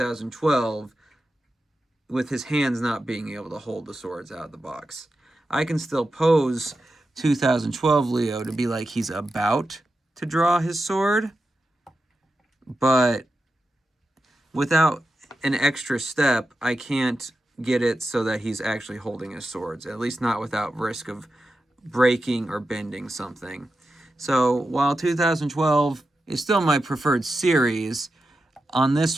with his hands not being able to hold the swords out of the box. I can still pose 2012 Leo to be like he's about to draw his sword, but without an extra step, I can't get it so that he's actually holding his swords, at least not without risk of breaking or bending something. So while 2012 is still my preferred series. On this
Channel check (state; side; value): normal; both; correlation 0.90